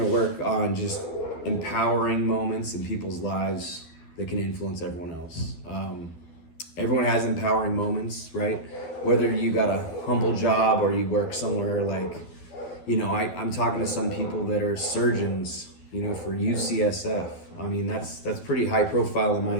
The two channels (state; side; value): late; right; 12 ms